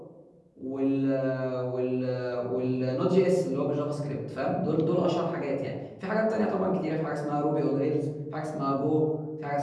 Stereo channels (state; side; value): identical; both; correlation 1.00